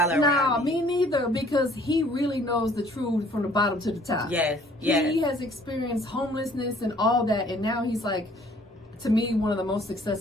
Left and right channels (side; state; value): both; normal; correlation 0.57